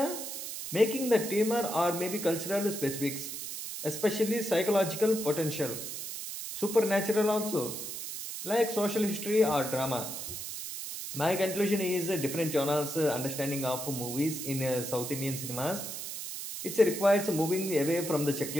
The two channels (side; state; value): right; noise; hiss, 7 dB below the sound